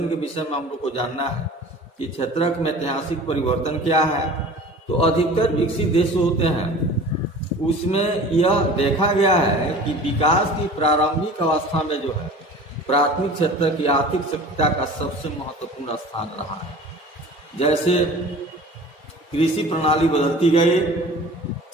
के विषय में हम लोग को जानना है कि क्षेत्रक में ऐतिहासिक परिवर्तन क्या है। तो अधिकतर विकसित देश होते हैं उसमें यह देखा गया है कि विकास की प्रारंभिक अवस्था में जो है प्राथमिक क्षेत्र की आर्थिक सक्रियता का सबसे महत्वपूर्ण स्थान रहा है। जैसे कृषि प्रणाली बदलती गई,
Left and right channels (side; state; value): both; normal; correlation 0.42